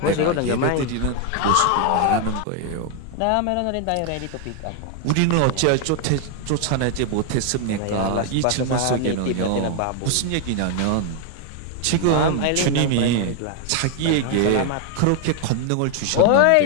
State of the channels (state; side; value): different; both; correlation 0.00